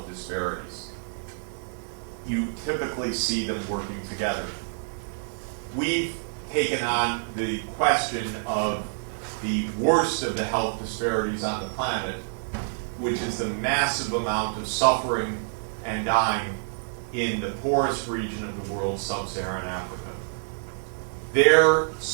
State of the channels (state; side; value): silent; left; digital silence